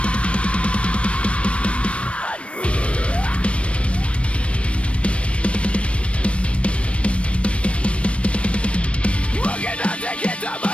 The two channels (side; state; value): right; late; 0.061 ms